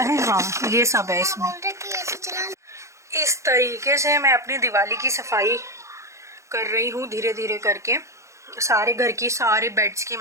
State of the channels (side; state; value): left; late; 0.14 ms